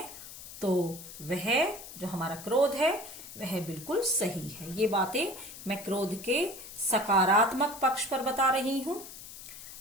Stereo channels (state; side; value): noise; left; hiss, 13 dB below the sound